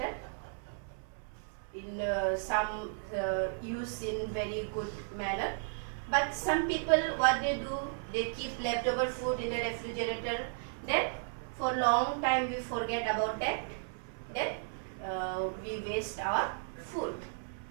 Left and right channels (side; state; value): left; silent; 55 dB below the other